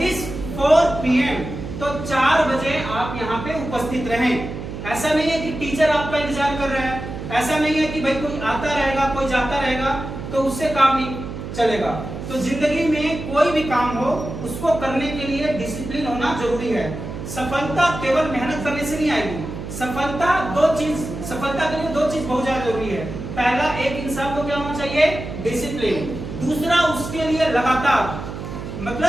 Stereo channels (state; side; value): noise; right; hum, 8 dB below the sound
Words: is 4 PM तो 4 बजे आप यहाँ पे उपस्थित रहें। ऐसा नहीं है कि टीचर आपका इंतजार कर रहा है, ऐसा नहीं है कि भाई कोई आता रहेगा कोई जाता रहेगा तो उससे काम नहीं चलेगा। तो जिंदगी में कोई भी काम हो उसको करने के लिए डिसिप्लिन होना जरूरी है। सफलता केवल मेहनत करने से नहीं आएगी। सफलता के लिए दो चीज बहुत ज्यादा जरूरी है। पहला, एक इंसान को क्या होना चाहिए? डिसिप्लिन। दूसरा, उसके लिए लगातार,